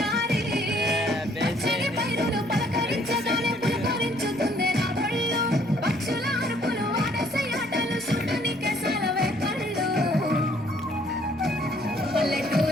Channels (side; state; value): right; noise; hum, 26 dB below the sound